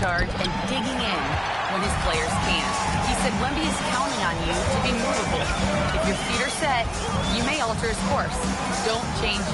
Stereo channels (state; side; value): identical; both; correlation 1.00